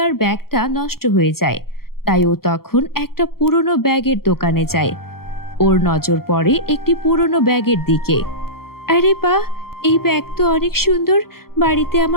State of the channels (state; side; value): late; right; 0.93 ms